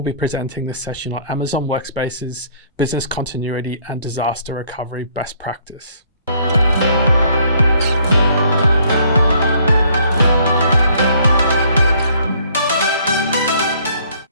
be presenting this session on Amazon WorkSpaces Business Continuity and Disaster Recovery Best Practice.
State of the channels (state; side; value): inverted; both; correlation -0.62